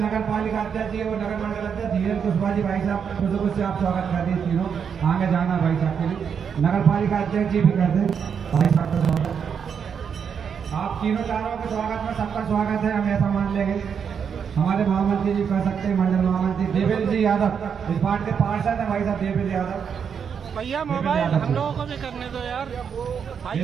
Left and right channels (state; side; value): quieter; left; 7.1 dB